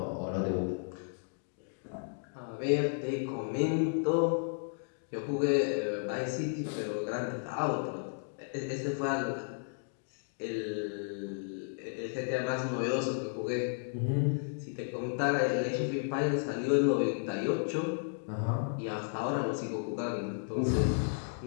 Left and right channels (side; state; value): right; silent; digital silence